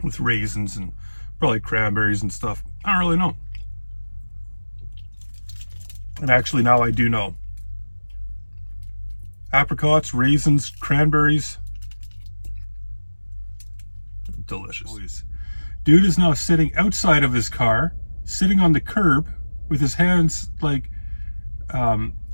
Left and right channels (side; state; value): both; inverted; correlation -1.00